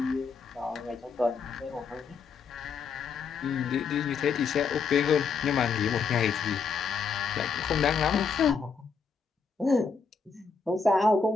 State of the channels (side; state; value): right; quieter; 5.4 dB